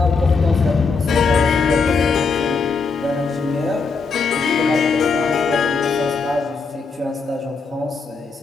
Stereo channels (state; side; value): quieter; right; 4.7 dB